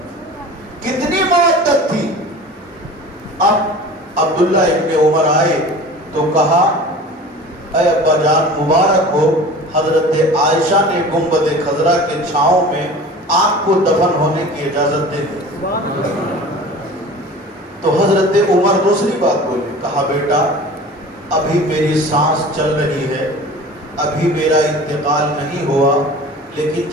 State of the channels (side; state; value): both; normal; correlation 0.39